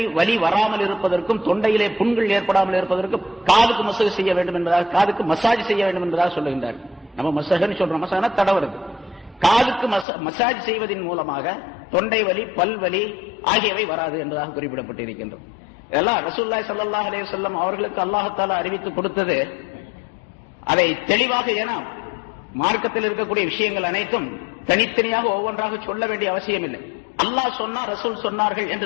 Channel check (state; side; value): drops out; right; at 10.1 s